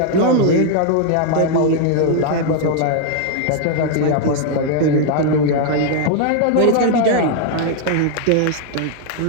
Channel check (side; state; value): both; different; correlation 0.00